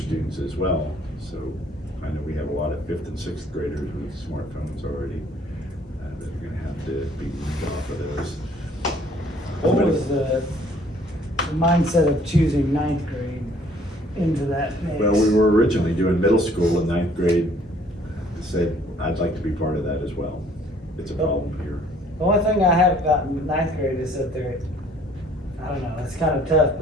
as well. So I know we have a lot of 5th and 6th graders with smartphones already that are gonna have to be moved off of those. What was the mindset of choosing ninth grade into that mix? Well, we were originally doing middle school and 9th grade. Said, I'd like to be part of that as well. It's a problem here. The only thing I have about ninth grade is that I don't know, it's kind of tough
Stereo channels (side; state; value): both; normal; correlation 0.59